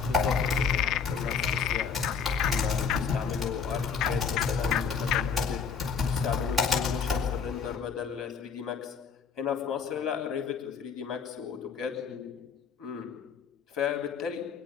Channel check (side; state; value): right; quieter; 6.2 dB